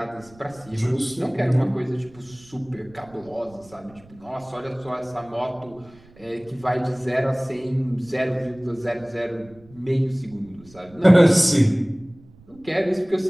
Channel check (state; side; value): noise; right; rumble, 25 dB below the sound